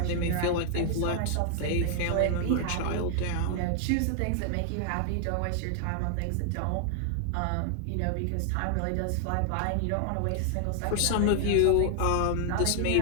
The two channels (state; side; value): different; both; correlation 0.00